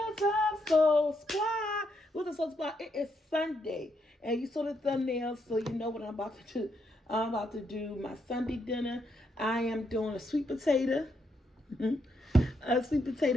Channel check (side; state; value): both; normal; correlation 0.78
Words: up, Soul Supply? What's up, Soul Supply? It is Sunday, and you saw the thumbnail, so you know what I'm about to do. I'm about to do my Sunday dinner. I am doing a sweet potato. A sweet